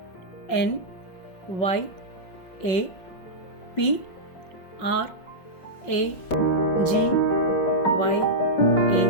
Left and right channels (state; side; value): late; right; 5.4 ms